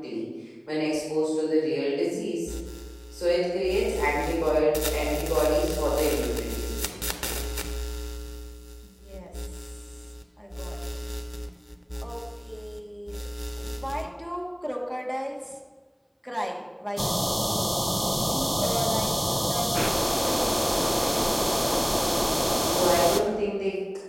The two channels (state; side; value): identical; both; correlation 1.00